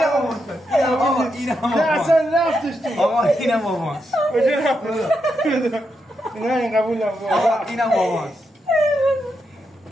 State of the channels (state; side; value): normal; both; correlation 0.83